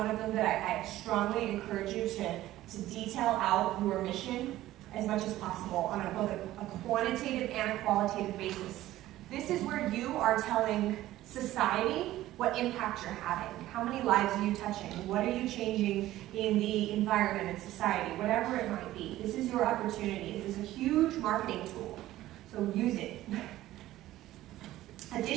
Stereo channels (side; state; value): left; quieter; 15.1 dB